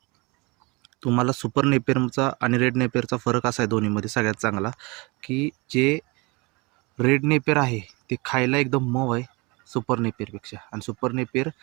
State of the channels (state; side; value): quieter; left; 26.6 dB